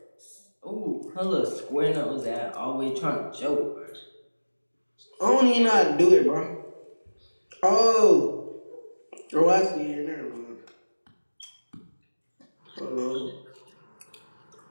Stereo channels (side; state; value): both; inverted; correlation -1.00